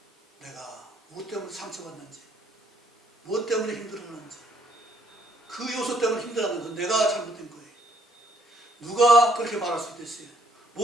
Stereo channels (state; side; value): normal; both; correlation 0.66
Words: 내가 무엇 때문에 상처받는지 무엇 때문에 힘들어하는지 그 요소 때문에 힘들어하는 건 내가 잘못된 거예요. 누가 그렇게 말할 수도 있어요.